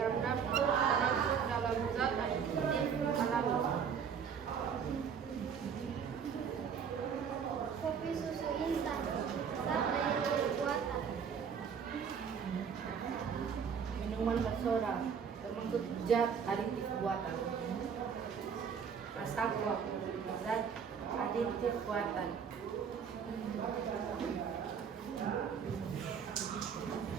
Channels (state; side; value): quieter; left; 6.9 dB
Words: dapur termasuk dalam zat aditif alami. kopi susu instan, zat aditif buatan, minuman bersoda, termasuk zat aditif buatan. Masako, zat aditif buatan.